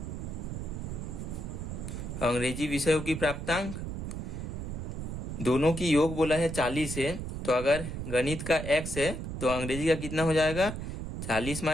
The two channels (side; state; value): right; noise; rumble, 5 dB below the sound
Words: अंग्रेजी विषयों की प्राप्तांक दोनों की योग बोला है 40 है, तो अगर गणित का x है तो अंग्रेजी का कितना हो जाएगा, 40